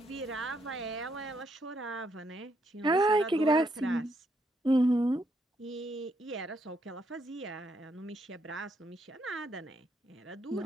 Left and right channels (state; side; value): normal; both; correlation 0.75